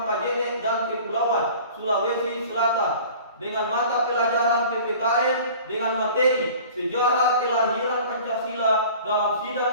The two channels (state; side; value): inverted; both; correlation -0.44